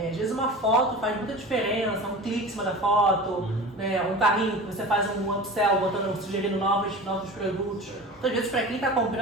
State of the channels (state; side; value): normal; both; correlation 0.34